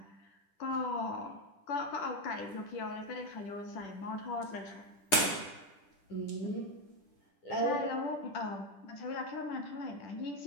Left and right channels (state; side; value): late; right; 10 ms